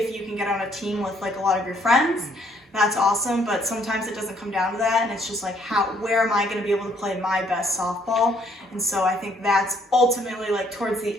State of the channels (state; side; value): normal; both; correlation 0.66